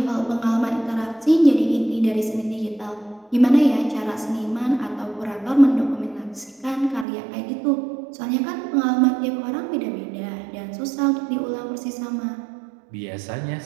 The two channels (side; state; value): left; drops out; at 7.1 s